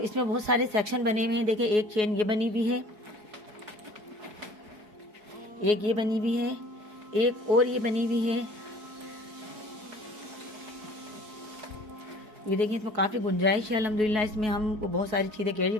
میں بہت سارے سیکشن بنے ہوئے ہیں. دیکھیں ایک چین یہ بنی ہوئی ہے، ایک یہ بنی ہوئی ہے، ایک اور یہ بنی ہوئی ہے. یہ دیکھیں اس میں کافی گنجائش ہے الحمدللہ. اس میں ہم بہت ساری چیزیں کیری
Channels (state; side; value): late; left; 4.7 ms